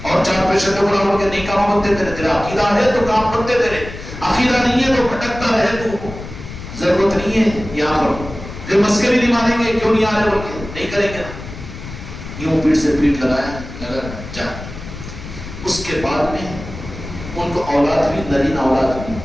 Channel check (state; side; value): noise; left; rumble, 12 dB below the sound